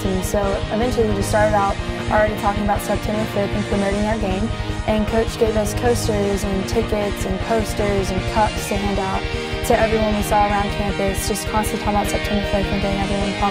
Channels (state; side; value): identical; both; correlation 1.00